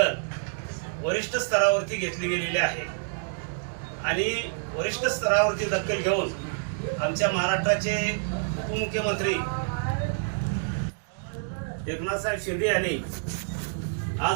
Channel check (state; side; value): silent; left; digital silence